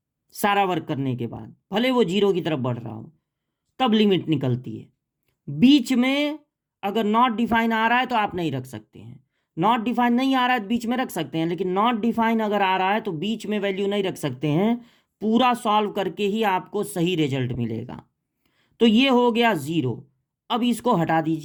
सारा वर्क करने के बाद, भले वो 0 की तरफ बढ़ रहा हो, तब लिमिट निकलती है। बीच में अगर नॉट डिफाइन आ रहा है तो आप नहीं रख सकते हैं, नॉट डिफाइन नहीं आ रहा है तो बीच में रख सकते हैं, लेकिन नॉट डिफाइन अगर आ रहा है तो बीच में वैल्यू नहीं रख सकते हैं। पूरा सॉल्व करके ही आपको सही रिजल्ट मिलेगा। तो ये हो गया 0। अब इसको हटा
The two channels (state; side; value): identical; both; correlation 1.00